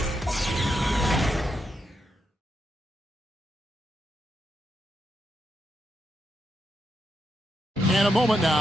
And a moment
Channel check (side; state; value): both; normal; correlation 0.83